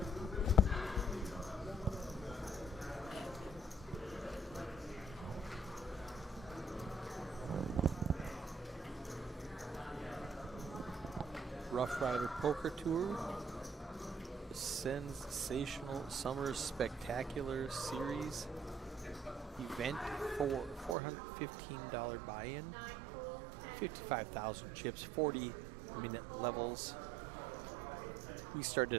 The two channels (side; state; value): left; drops out; at 21.0 s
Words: Roughrider Poker Tour. Sensational Summer Spectacular Series event for $415 buy-in, 55,000 chips, 40-minute levels. We